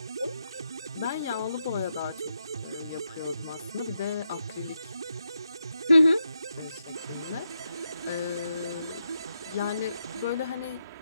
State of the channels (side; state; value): both; inverted; correlation -0.84